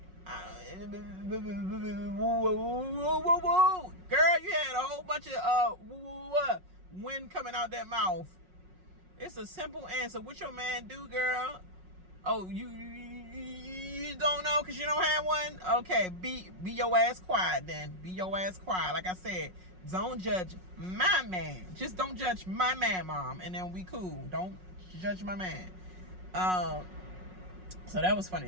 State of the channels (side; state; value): left; late; 5.5 ms